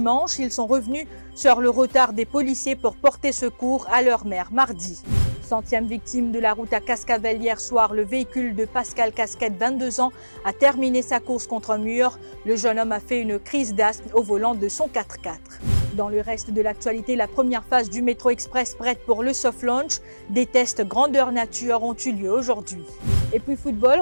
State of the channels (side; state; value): both; inverted; correlation -1.00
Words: ils sont revenus sur le retard des policiers pour porter secours à leur mère mardi. 100e victime de la route à Cascavel hier soir, le véhicule de Pascal Casquette, 22 ans, a terminé sa course contre un mur. Le jeune homme a fait une crise d'asthme au volant de son 4x4. Dans le reste de l'actualité, la première phase du métro express prête pour le soft launch. Des tests grandeur nature ont eu lieu aujourd'hui. Et puis football,